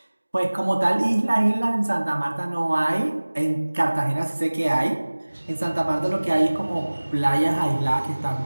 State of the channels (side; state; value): both; inverted; correlation -1.00